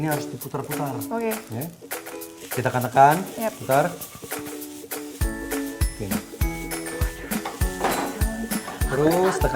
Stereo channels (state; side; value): identical; both; correlation 1.00